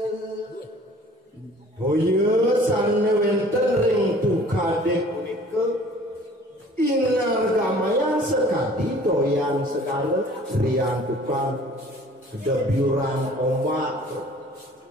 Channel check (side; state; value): both; normal; correlation 0.51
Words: priantukan kedebyuran ombak